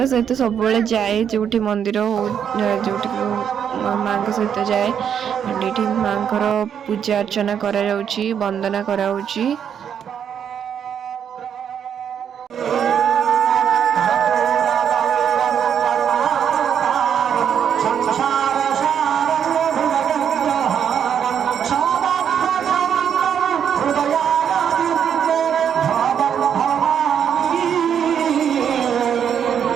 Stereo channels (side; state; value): left; quieter; 8.3 dB